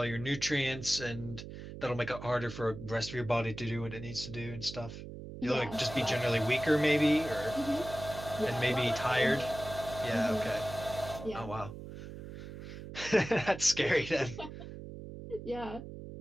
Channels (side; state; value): right; noise; hum, 11 dB below the sound